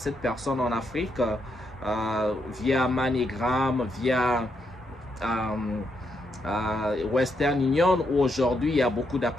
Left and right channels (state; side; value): normal; both; correlation 0.79